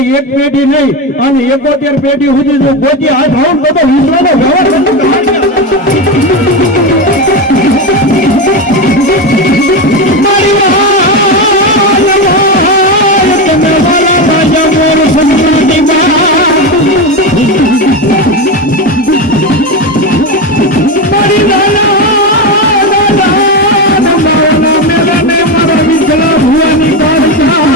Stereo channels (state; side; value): normal; both; correlation 0.15